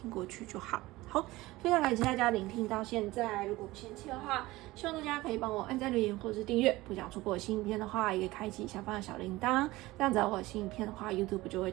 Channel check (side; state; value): left; quieter; 19.1 dB